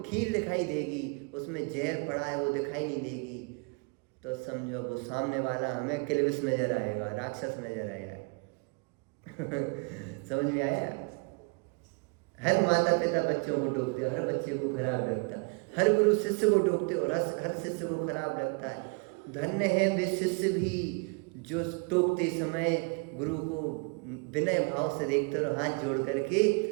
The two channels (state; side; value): quieter; left; 32.6 dB